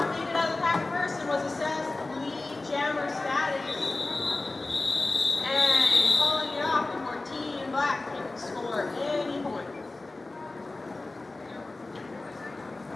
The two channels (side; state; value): right; quieter; 3.2 dB